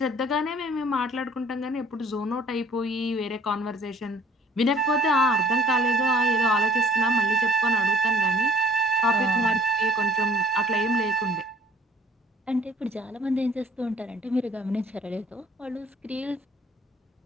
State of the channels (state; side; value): normal; both; correlation 0.54